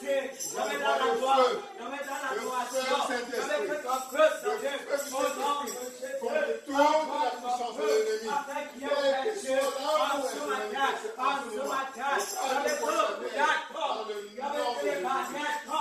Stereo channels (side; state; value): both; identical; correlation 1.00